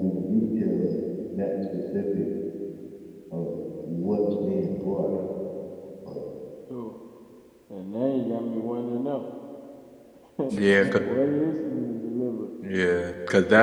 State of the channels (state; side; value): identical; both; correlation 1.00